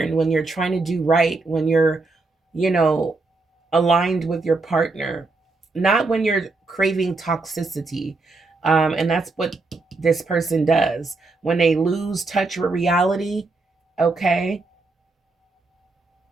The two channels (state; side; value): quieter; left; 3.6 dB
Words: when you're trying to do right, when you're, you know, aligned with your partner, not when you're craving toxicity. And that's what this person does. When they lose touch with reality, okay,